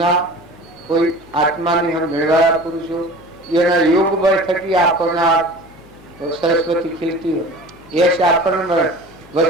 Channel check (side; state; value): left; noise; hum, 25 dB below the sound